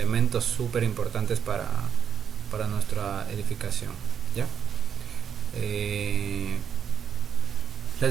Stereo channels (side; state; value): left; quieter; 7.9 dB